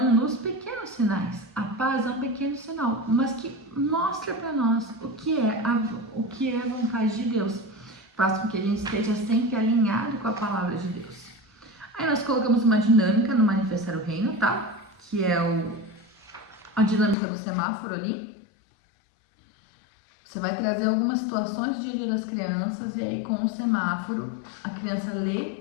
nos pequenos sinais. A paz é um pequeno sinal, mas que mostra para nós o que é a vontade de Deus. Faz com que a gente esteja sempre alinhado com a palavra de Deus. Aí nós colocamos uma dinâmica no Manifestar o Reino, tá? Que é a dinâmica do semáforo ali. Você vai trazer algumas situações do dia a dia das crianças e aí com o semáforo a criança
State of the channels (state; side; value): drops out; right; at 17.2 s